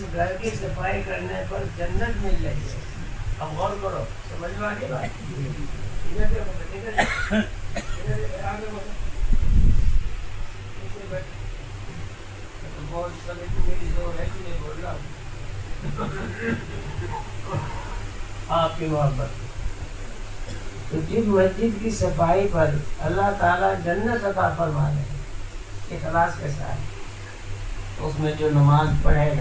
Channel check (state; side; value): identical; both; correlation 1.00